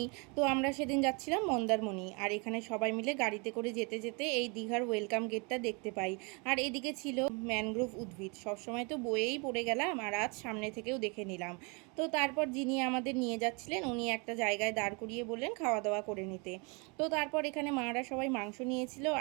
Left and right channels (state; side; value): quieter; left; 31.5 dB